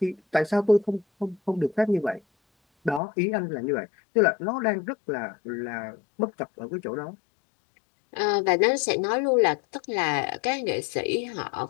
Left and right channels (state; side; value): drops out; right; at 3.0 s